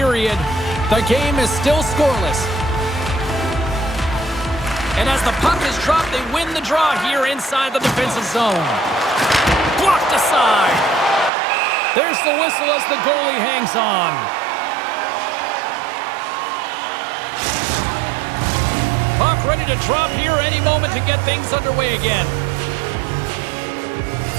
the game is still scoreless. And as the puck is dropped, they win the draw here inside the defensive zone. Blocked aside. There's the whistle as the goalie hangs on. Puck ready to drop here any moment to get things underway again.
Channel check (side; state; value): left; drops out; at 11.3 s